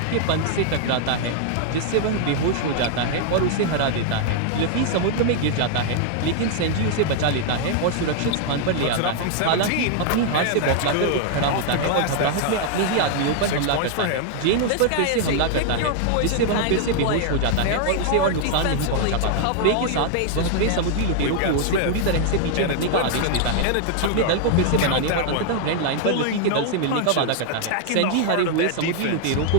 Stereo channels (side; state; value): both; different; correlation 0.00